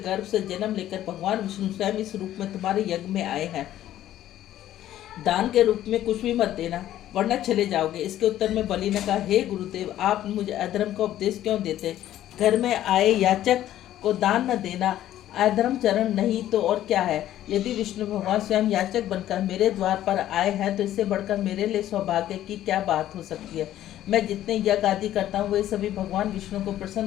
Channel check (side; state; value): right; quieter; 12.7 dB